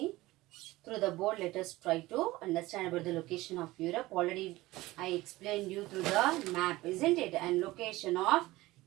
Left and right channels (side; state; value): left; quieter; 18.7 dB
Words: through the board, let us try to understand about the location of Europe. Already, I explained you through the map, isn't it? And location of